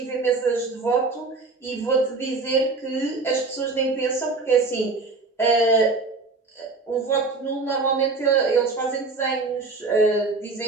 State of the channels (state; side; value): quieter; left; 3.7 dB